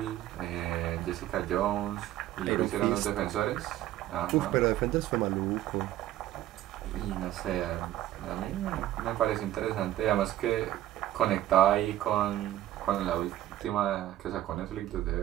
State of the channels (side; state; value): left; quieter; 13.8 dB